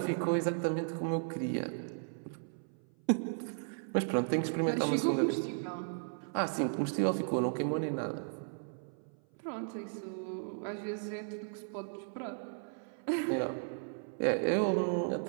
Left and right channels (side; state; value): left; silent; 54 dB below the other